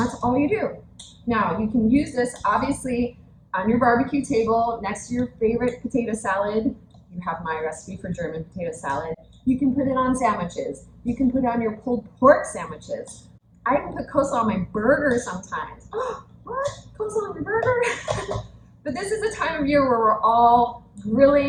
all you do. Now, you can use this, obviously, on your barbecue table next to your favorite potato salad. You have my recipe for German potato salad. You can put it on sandwiches. You can put it on your pulled pork sandwiches. I even put coleslaw on my burger sometimes. Oh, what? Coleslaw on your burger? But this is the time of year where we're all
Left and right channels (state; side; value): identical; both; correlation 1.00